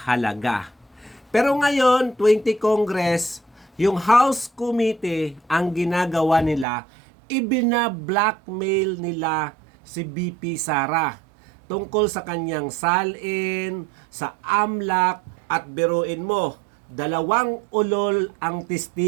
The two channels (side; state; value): left; drops out; at 6.7 s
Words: Pero ngayon, 20 Congress, yung House Committee, ang ginagawa nila, ibina-blackmail nila si BP Sara tungkol sa kanyang salin, sa AMLAC, at biruin mo, 2 ulol ang